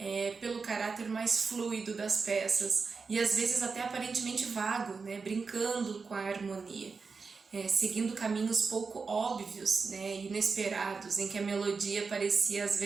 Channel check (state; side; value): quieter; left; 4.8 dB